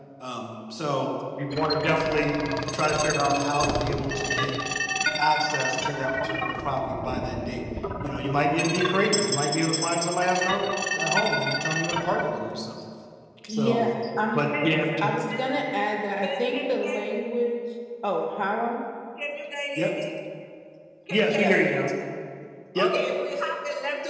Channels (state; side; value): identical; both; correlation 1.00